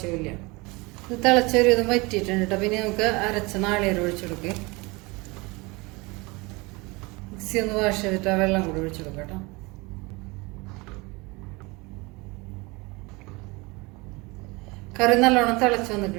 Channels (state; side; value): quieter; left; 25.1 dB